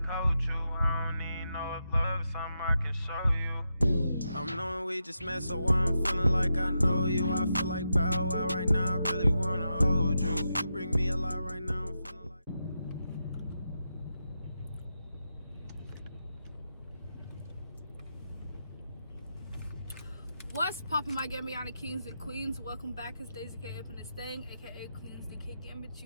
coach you. I don't even know if love is something I can show you. I'm knowing we just met, so I'm feeling like I know you. I feel like Bow Wow right now, I really wanna hold you. You bring me a lot right now, I'm feeling like... What's poppin', my Gambiana kings and queens? Welcome back. It's Daisy K up in this thing, aka Queens DK Gambit.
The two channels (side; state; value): both; inverted; correlation -0.87